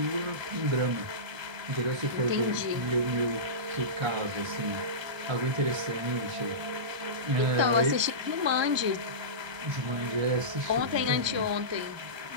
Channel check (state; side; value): late; left; 1.3 ms